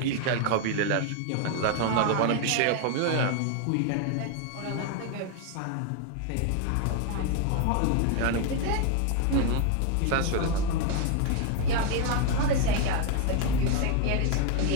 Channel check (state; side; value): different; both; correlation 0.01